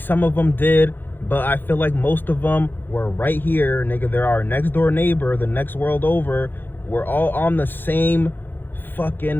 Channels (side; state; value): right; late; 0.094 ms